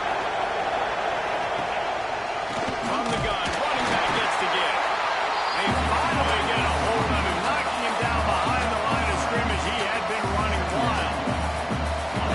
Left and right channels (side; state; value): right; noise; hum, 28 dB below the sound